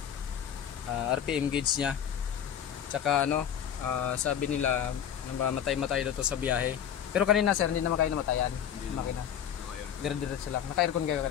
RPM gauge niya. Tsaka sabi nila namatay-matay daw to sa biyahe. Pero kanina sir, hindi naman kayo namatayan. Makina. Dire-diretso lang. Naka-aircon kayo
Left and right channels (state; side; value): quieter; right; 9.3 dB